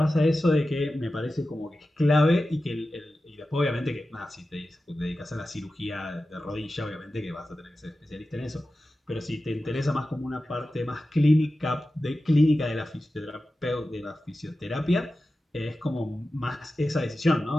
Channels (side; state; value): both; normal; correlation 0.93